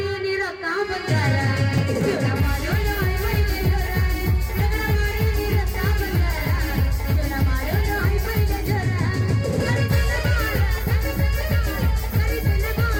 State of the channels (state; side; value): identical; both; correlation 1.00